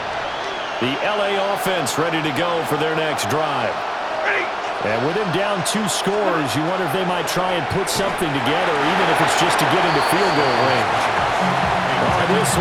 The LA offense ready to go for their next drive. And with him down 2 scores, you wonder if they might try and put something together, even if it's just to get into field goal range. Oh, this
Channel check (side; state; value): both; identical; correlation 1.00